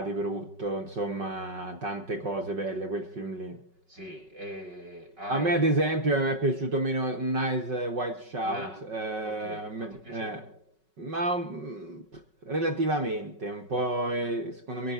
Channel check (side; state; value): left; late; 5.3 ms